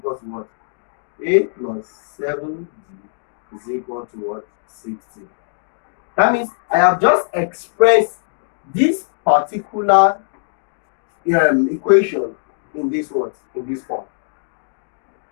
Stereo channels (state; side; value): silent; right; digital silence